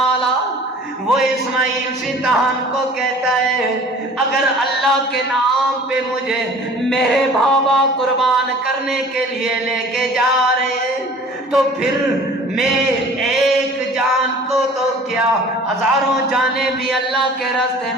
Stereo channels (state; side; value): normal; both; correlation 0.47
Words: اعلیٰ. وہ اسماعیل شیطان کو کہتا ہے اگر اللہ کے نام پہ مجھے میرے بابا قربان کرنے کے لیے لے کے جا رہے ہیں تو پھر میں ایک جان کو تو کیا ہزاروں جانیں بھی اللہ کے راستے